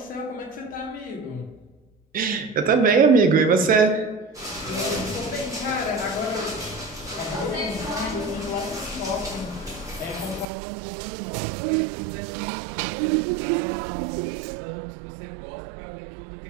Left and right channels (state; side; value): drops out; left; at 10.5 s